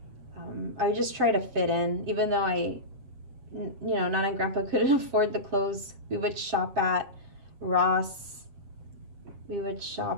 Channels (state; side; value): late; left; 7.6 ms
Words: I would just try to fit in, even though Nana and Grandpa couldn't afford the clothes. We would shop at Ross. We would